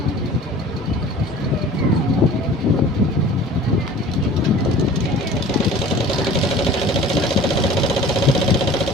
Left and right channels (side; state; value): both; normal; correlation 0.44